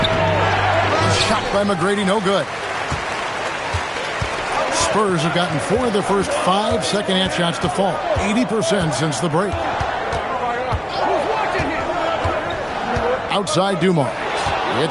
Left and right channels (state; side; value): identical; both; correlation 1.00